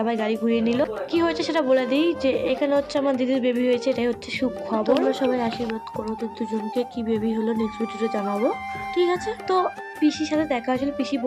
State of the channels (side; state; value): both; identical; correlation 1.00